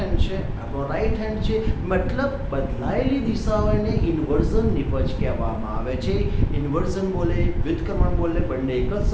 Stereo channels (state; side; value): identical; both; correlation 1.00